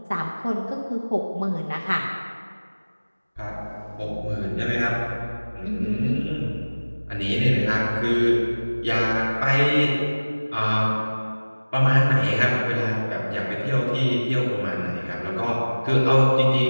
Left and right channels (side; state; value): both; inverted; correlation -1.00